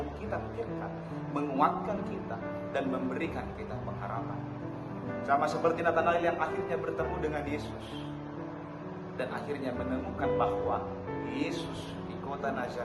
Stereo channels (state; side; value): identical; both; correlation 1.00